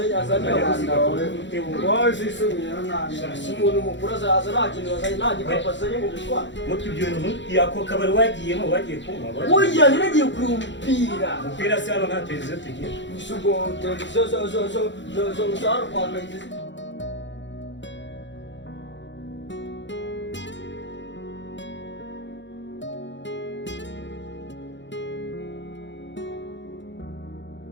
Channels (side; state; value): right; late; 0.53 ms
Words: abana wawe zisubira umuntu mukuru azaza nta kintu azanye nta gikapu azanye mu gutwara mutwe ibyo bintu yako kabari wagiyemo wagiye kunywa oya niragiye kureba umupira se hano nta televiziyo tugira isugo televiziyo zo hano kwa kayitesi